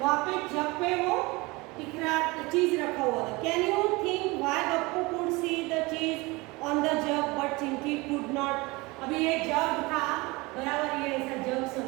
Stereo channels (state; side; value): quieter; left; 23.8 dB